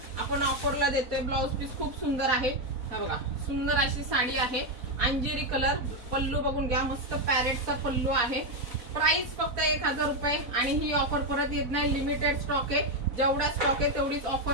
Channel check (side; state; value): left; late; 4.0 ms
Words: आपण ऑफरला देतोय। ब्लाउज पीस खूप सुंदर आहे, हा बघा सुंदर अशी साडी आहे। अंजिरी कलर, पल्लू बघून घ्या, मस्त पॅरेटचा पल्लू आहे। प्राइस फक्त 1000 रुपये आणि ही ऑफर परत येत नाही, लिमिटेड स्टॉक आहे। जेवढा स्टॉक आहे तेवढीच